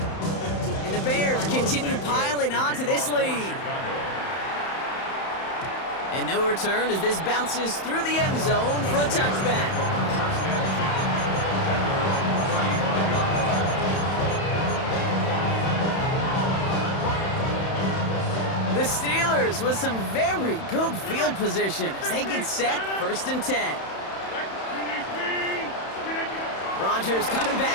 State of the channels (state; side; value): late; right; 31 ms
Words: And the Bears continue piling onto this lead. And no return as this bounces through the end zone for a touchback. The Steelers with some very good field position as they get set first and 10. Rodgers coming